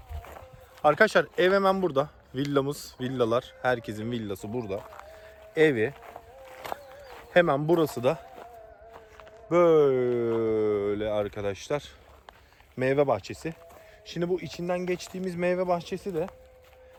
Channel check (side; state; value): both; identical; correlation 1.00